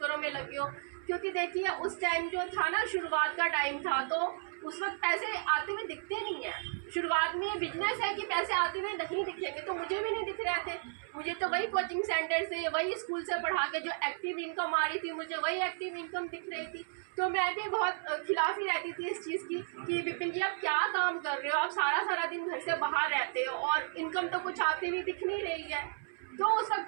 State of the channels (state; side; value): silent; left; 55 dB below the other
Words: में लगे हो। क्योंकि देखिए उस टाइम जो था ना, शुरुआत का टाइम था, तो उस वक्त पैसे आते हुए दिखते नहीं है। शुरुआत में ये बिजनेस है कि पैसे आते हुए नहीं दिखेंगे, तो मुझे भी नहीं दिख रहे थे। मुझे तो वही कोचिंग सेंटर से, वही स्कूल से पढ़ा के जो एक्टिव इनकम आ रही थी, मुझे वही एक्टिव इनकम दिख रही थी। तो मैं भी बहुत खिलाफ ही रहती थी इस चीज़ की कि विपिन जी आप क्या काम कर रहे हो, आप सारा दिन घर से बाहर रहते हो और इनकम तो कुछ आती हुई दिख नहीं रही है। तो उस